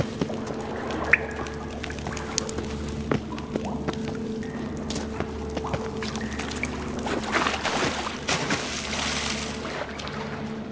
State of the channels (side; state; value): both; identical; correlation 1.00